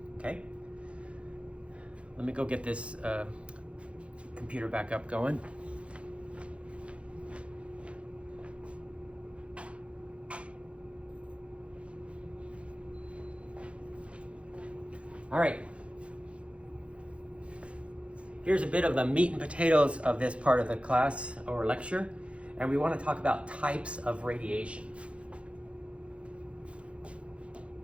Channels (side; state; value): left; late; 0.061 ms